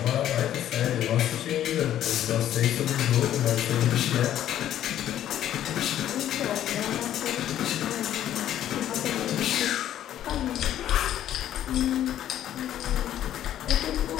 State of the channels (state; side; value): quieter; right; 11.6 dB